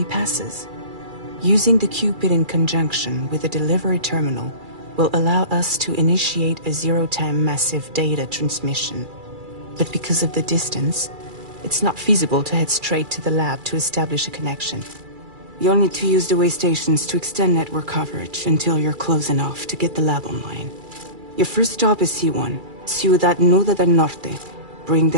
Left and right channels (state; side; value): late; left; 2.3 ms